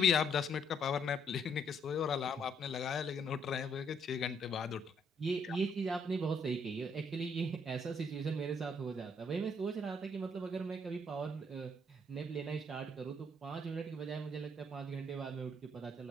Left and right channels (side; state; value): both; normal; correlation 0.70